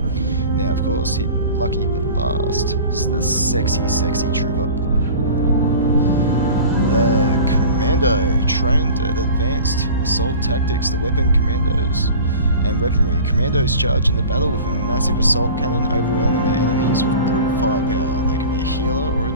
Now of course, lucky but last, is the sexy trooper. The Commando, trained at advanced assault tactics, the weapon commandos and weaponry. Commandos charge into battle with a massive assault cannon, overwhelming their enemies with brute firepower. They can be a healer or a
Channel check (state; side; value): inverted; both; correlation -0.40